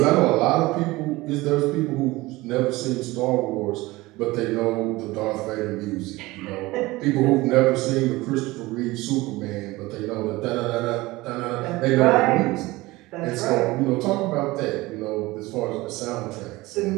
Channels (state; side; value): quieter; left; 20.4 dB